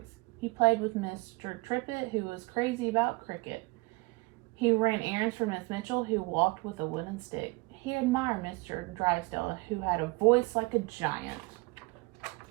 He played with Mr. Trippett, who was crazy about cricket. He ran errands for Miss Mitchell, who walked with a wooden stick. He admired Mr. Drysdale, who had a voice like a giant.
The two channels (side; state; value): left; quieter; 24.9 dB